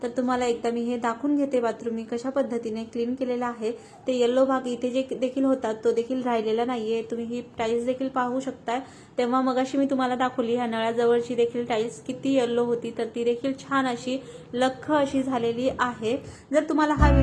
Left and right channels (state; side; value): identical; both; correlation 1.00